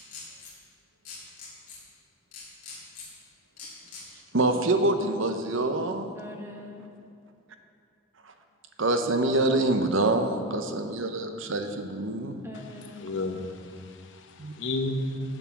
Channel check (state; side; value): normal; both; correlation 0.09